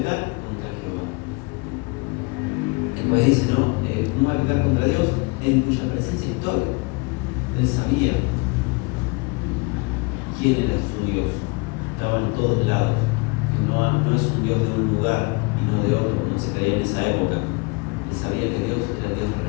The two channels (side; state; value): right; quieter; 28.7 dB